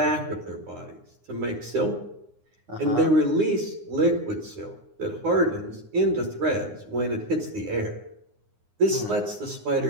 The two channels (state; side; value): late; left; 9.7 ms